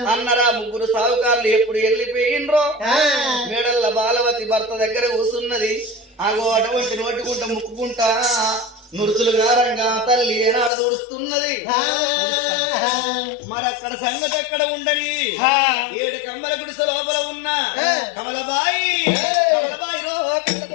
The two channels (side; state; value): right; drops out; at 10.7 s